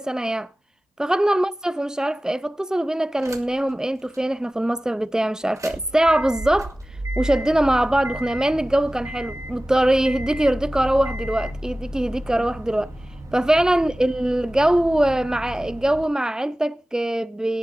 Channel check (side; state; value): both; normal; correlation 0.97